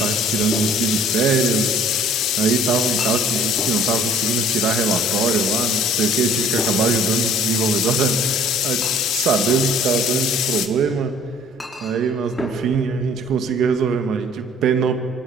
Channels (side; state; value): both; normal; correlation 0.53